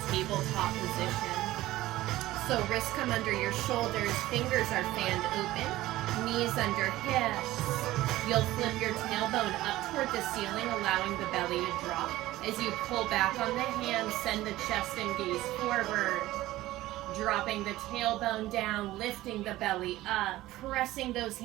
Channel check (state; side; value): quieter; left; 16.4 dB